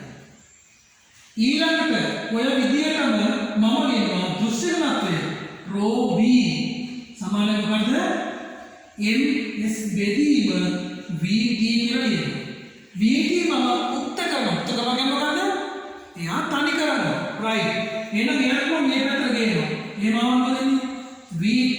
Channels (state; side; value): identical; both; correlation 1.00